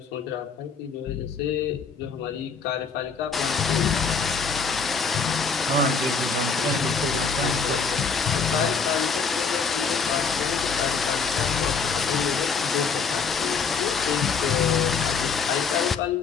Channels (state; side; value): quieter; right; 5.3 dB